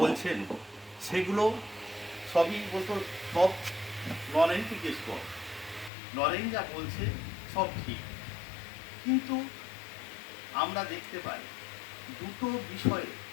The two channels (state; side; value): drops out; right; at 5.9 s